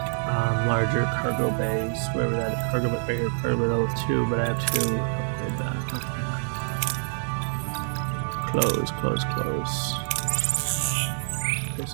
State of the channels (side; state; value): left; silent; digital silence